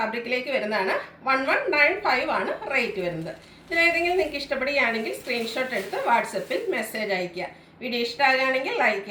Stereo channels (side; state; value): both; identical; correlation 1.00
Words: വരുന്നതാണ്. 1195 ആണ് റേറ്റ് വരുന്നത്. ഇതിലേതെങ്കിലും നിങ്ങൾക്ക് ഇഷ്ടപ്പെടുകയാണെങ്കിൽ സ്ക്രീൻഷോട്ട് എടുത്ത് വാട്സപ്പിൽ മെസ്സേജ് അയയ്ക്കുക. വീഡിയോ ഇഷ്ടമാകുകയാണെങ്കിൽ ലൈക്ക്